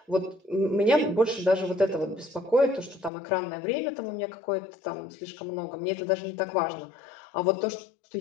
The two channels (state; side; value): drops out; right; at 3.1 s